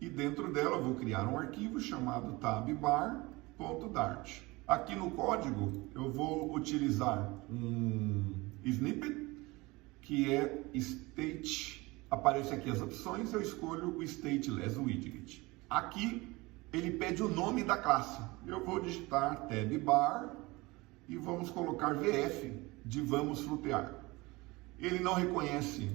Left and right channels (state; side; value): quieter; left; 22.7 dB